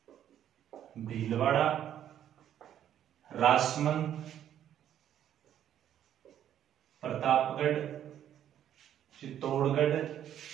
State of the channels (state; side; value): quieter; left; 10.5 dB